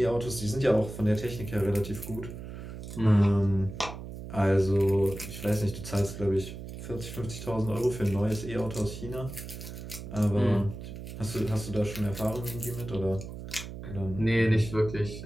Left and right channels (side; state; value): right; noise; hum, 10 dB below the sound